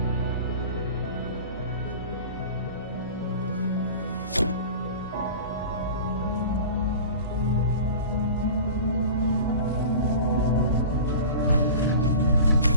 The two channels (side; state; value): both; inverted; correlation -0.37